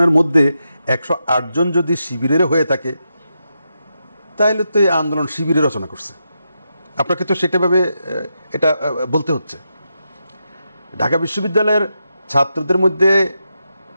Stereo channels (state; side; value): inverted; both; correlation -0.86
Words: মধ্যে 108 জন যদি শিবিরের হয়ে থাকে, তাহলে তো এই আন্দোলন শিবিরে রচনা করছে। আপনাকে তো সেটাভাবে এটা বলতে হচ্ছে। ঢাকা বিশ্ববিদ্যালয়ের ছাত্রদের মধ্যে